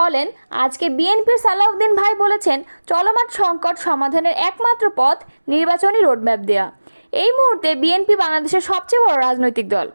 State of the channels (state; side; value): inverted; both; correlation -1.00